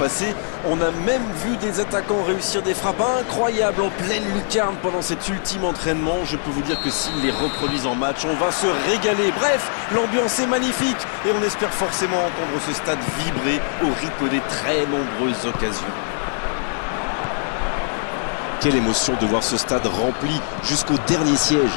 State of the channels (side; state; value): right; silent; 64 dB below the other